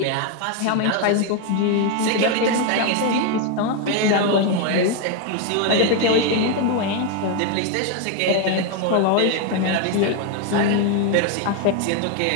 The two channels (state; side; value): different; both; correlation 0.01